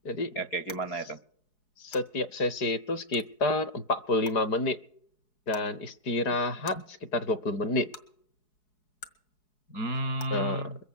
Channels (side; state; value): right; late; 4.7 ms